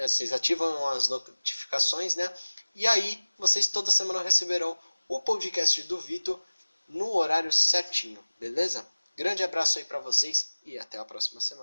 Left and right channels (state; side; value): inverted; both; correlation -1.00